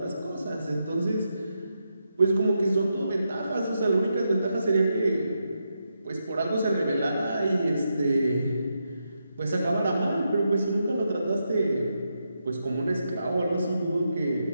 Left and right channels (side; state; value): both; inverted; correlation -0.84